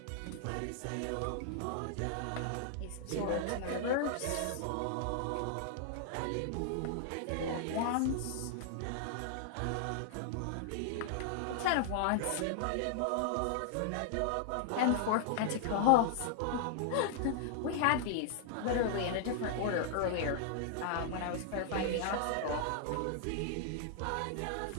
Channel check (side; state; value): both; different; correlation -0.01